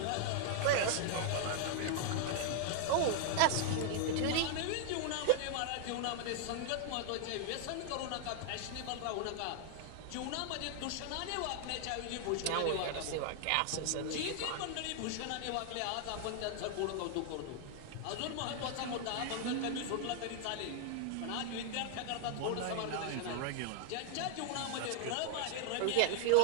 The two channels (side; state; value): both; different; correlation 0.00